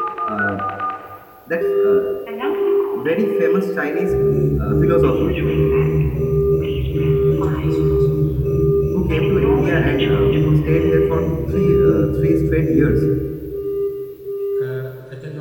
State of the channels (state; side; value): identical; both; correlation 1.00